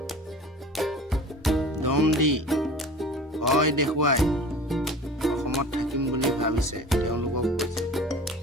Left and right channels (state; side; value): normal; both; correlation 0.40